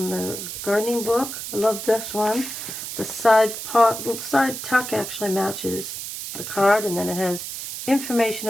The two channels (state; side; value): noise; right; hiss, 7 dB below the sound